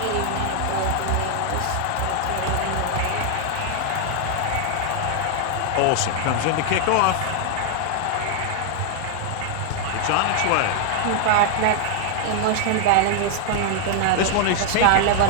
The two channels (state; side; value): different; both; correlation 0.00